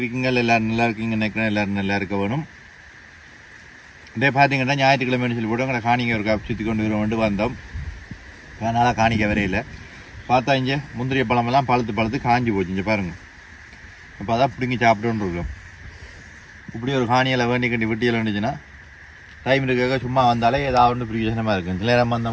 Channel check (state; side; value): identical; both; correlation 1.00